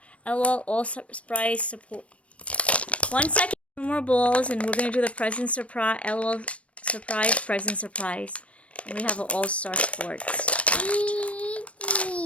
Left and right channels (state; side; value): late; right; 0.063 ms